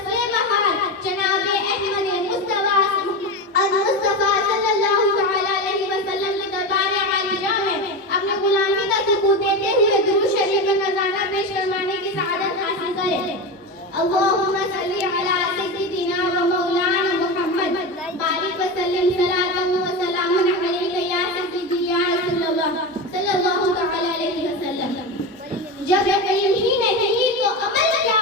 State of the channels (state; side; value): normal; both; correlation 0.20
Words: बहार, जनाब-ए अहमद मुस्तफ़ा सल्लल्लाहु तआला अलैहि वसल्लम के दरबार-ए आलिया में अपने गुलामी का सुकून देते हुए दुरूद शरीफ का नज़ारा पेश करवाने की सआदत हासिल करें। अल्लाहुम्मा सल्ली अला सय्यिदिना व मौलाना मुहम्मद बारिक व सल्लिम सलातन व सलामन अलैका या सय्यिदी या रसूलल्लाह सल्लल्लाहु तआला अलैहि वसल्लम। जब यकीन ही नहीं तो अमल क्या